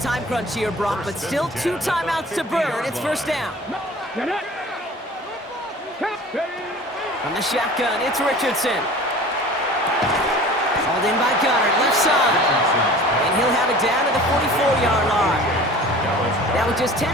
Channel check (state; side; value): normal; both; correlation 0.42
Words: crunch here, Brock, but still 2 timeouts to burn. It's 1st down. Get it. From the shotgun, it's Richardson. Hauled in by Goddard, left side. And he'll have it down to the 44-yard line. Now with just